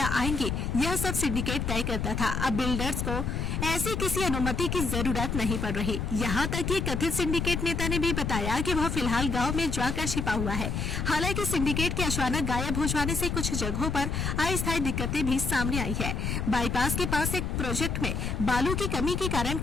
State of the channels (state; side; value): noise; left; rumble, 1 dB below the sound